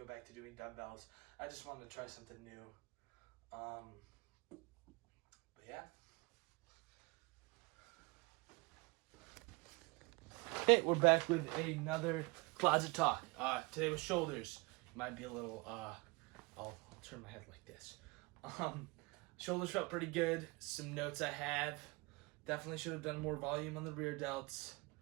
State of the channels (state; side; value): quieter; left; 26.2 dB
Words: back to doing dumbbells. I just wanted to try something new. But yeah. Okay, we're back with another closet talk. Today was shoulders. Might be a little, I'll turn my head like this. Shoulders felt pretty good. Some notes I have. Definitely should have done more volume on the rear delts.